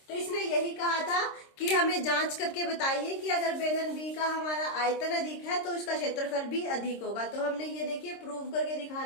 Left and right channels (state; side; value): late; right; 26 ms